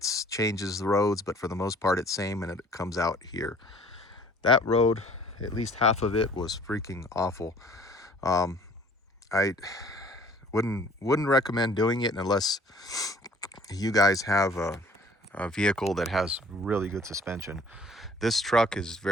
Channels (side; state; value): both; normal; correlation 0.53